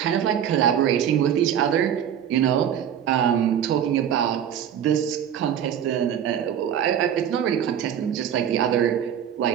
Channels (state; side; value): quieter; left; 9.4 dB